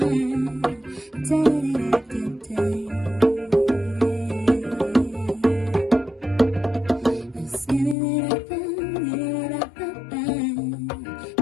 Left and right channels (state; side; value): drops out; right; at 8.0 s